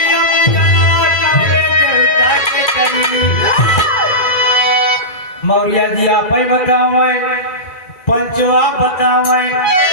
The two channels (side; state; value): right; late; 1.9 ms